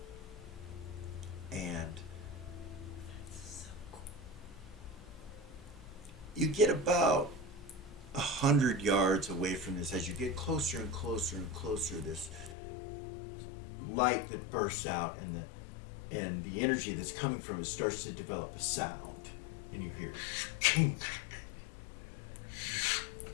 And you get about 100 yards away from this. As you get closer and closer and closer, this light that bursts out, and the energy that's coming from it starts to develop a sound, and you hear kink,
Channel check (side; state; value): right; drops out; at 12.6 s